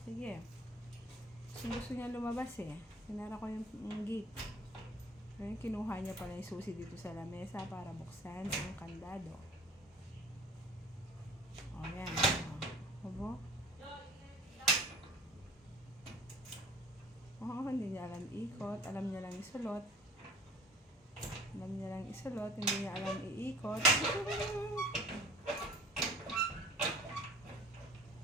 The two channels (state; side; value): normal; both; correlation 0.47